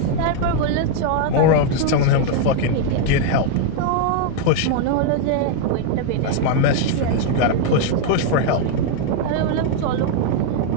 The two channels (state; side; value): different; both; correlation 0.00